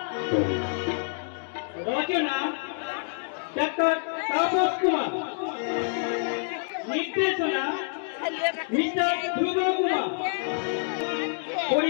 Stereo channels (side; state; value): right; silent; digital silence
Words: রচনা ডাক্তার তাপস কুমার, নির্দেশনা মিস্টার ধ্রুব কুমার,